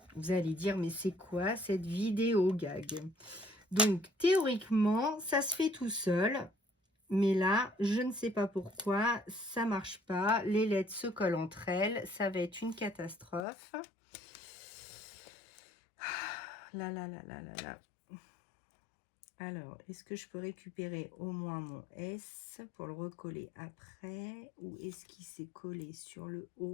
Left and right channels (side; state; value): right; drops out; at 13.5 s